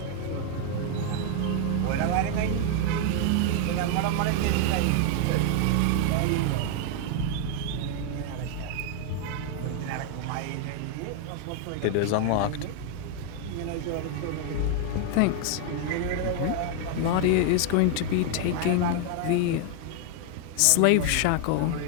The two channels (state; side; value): different; both; correlation 0.00